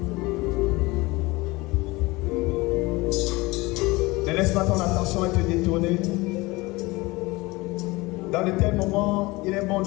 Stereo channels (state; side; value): quieter; right; 22.4 dB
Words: Ne laisse pas ton attention être détournée. Dans de tels moments, il est bon